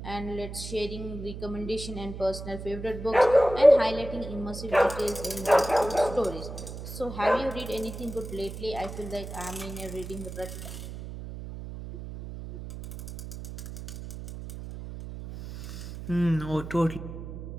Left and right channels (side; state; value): right; noise; hum, 10 dB below the sound